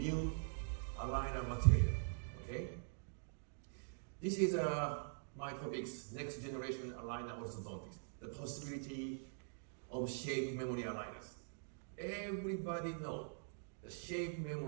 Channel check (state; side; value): silent; left; digital silence